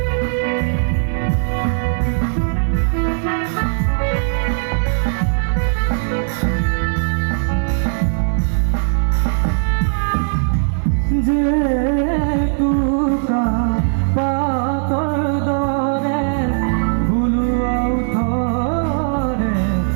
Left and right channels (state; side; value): silent; left; 59 dB below the other